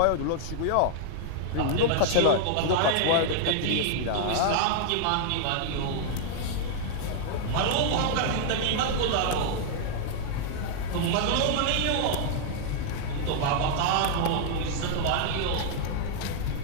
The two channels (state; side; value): different; both; correlation -0.01